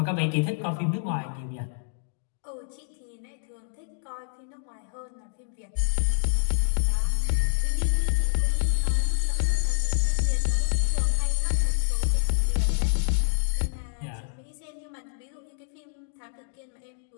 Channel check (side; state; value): right; silent; digital silence